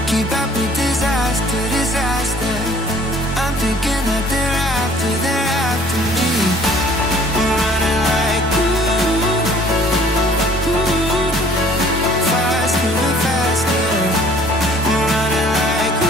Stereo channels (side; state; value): both; normal; correlation 0.55